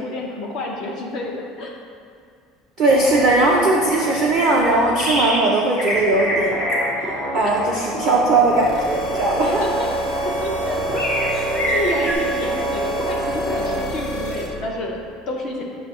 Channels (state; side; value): normal; both; correlation 0.40